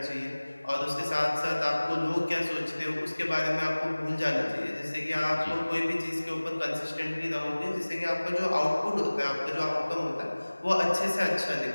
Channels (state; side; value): inverted; both; correlation -1.00